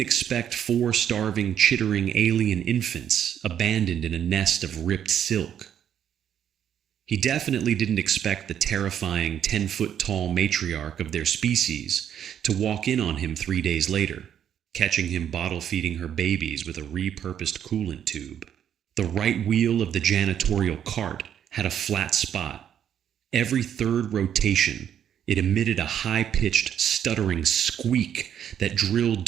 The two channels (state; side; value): quieter; left; 9.4 dB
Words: 4 starving, chittering alien infants abandoned in a nest of ripped silk. He definitely didn't expect the terrifying 10-foot-tall matriarch of their species to walk in on him 3 days later, catching him bottle-feeding her babies with a repurposed coolant tube. The right wheel of the janitorial cart had a flat spot. Every third rotation, it emitted a high-pitched, stuttering squeak that drilled